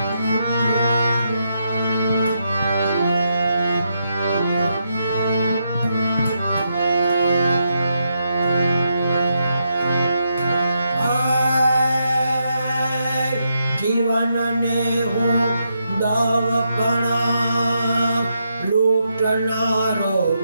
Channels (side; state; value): both; inverted; correlation -0.81